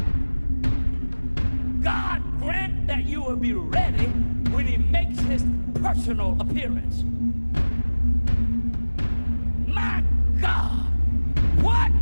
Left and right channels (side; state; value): both; inverted; correlation -1.00